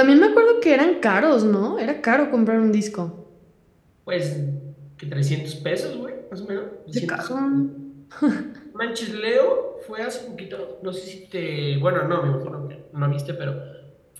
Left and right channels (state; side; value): identical; both; correlation 1.00